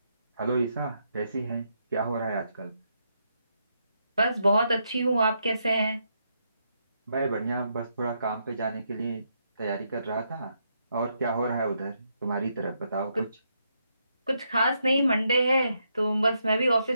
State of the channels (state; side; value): inverted; both; correlation -0.79